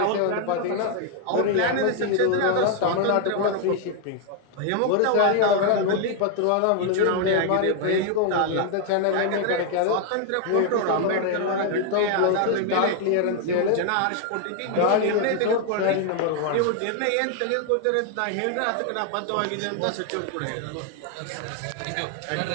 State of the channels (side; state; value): both; different; correlation 0.00